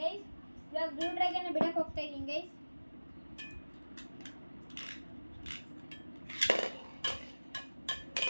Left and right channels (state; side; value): inverted; both; correlation -1.00